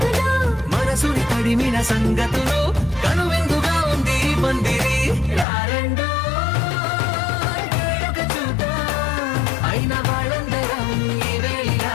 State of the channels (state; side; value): drops out; right; at 5.5 s